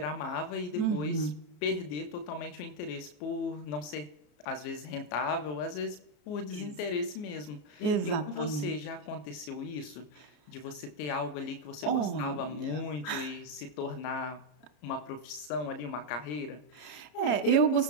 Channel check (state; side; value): late; right; 34 ms